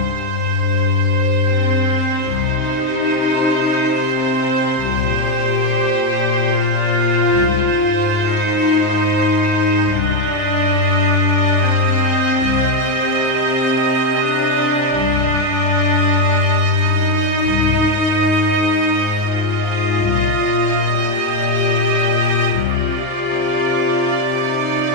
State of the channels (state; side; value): late; right; 38 ms